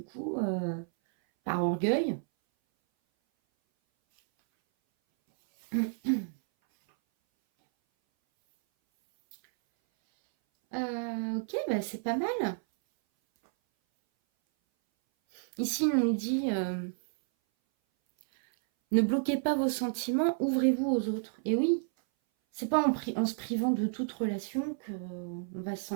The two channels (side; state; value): left; silent; 57 dB below the other